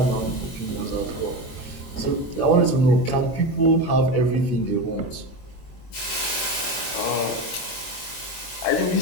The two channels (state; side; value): late; right; 22 ms